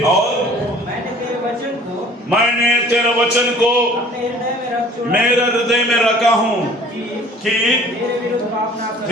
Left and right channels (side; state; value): both; normal; correlation 0.50